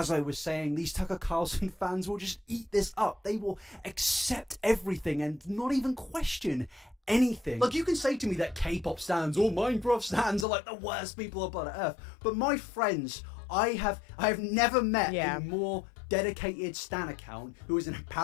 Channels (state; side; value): drops out; right; at 10.5 s